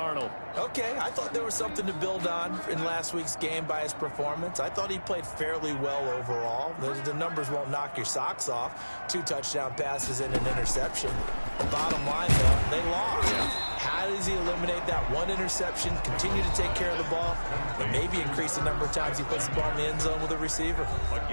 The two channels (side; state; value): both; inverted; correlation -1.00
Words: Okay, I thought there was something to build on in last week's game by his performance. I thought he played fairly well overall. The numbers won't knock your socks off. 2 touchdown passes and an interception. Bottom line, though, they lost. How does he eliminate that one interception, continue to take care of the ball, and maybe increase the number of times he puts the ball in the end zone with a receiver? A